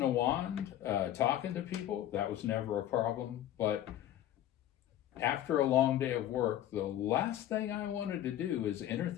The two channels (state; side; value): quieter; right; 12.1 dB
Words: a wand, talking to people, that was never a problem. But after a long day of work, the last thing I wanted to do is enter